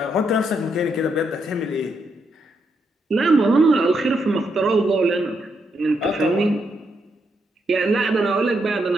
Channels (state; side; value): normal; both; correlation 0.79